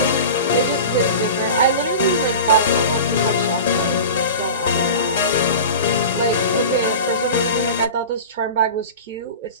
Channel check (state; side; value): inverted; both; correlation -0.32